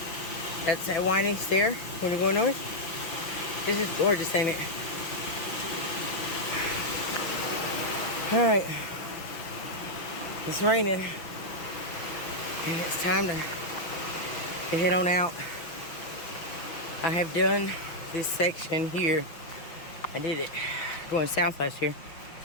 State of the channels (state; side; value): late; right; 5.9 ms